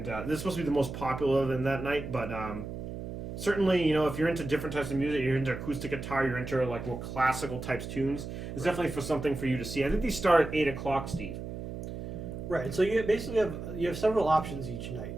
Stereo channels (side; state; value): right; noise; hum, 8 dB below the sound